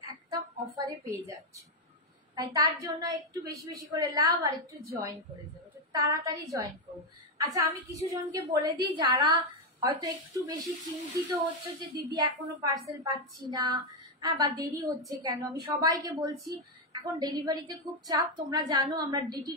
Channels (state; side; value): normal; both; correlation 0.04